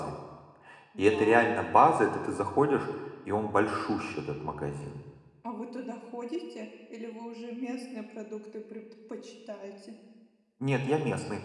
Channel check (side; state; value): both; identical; correlation 1.00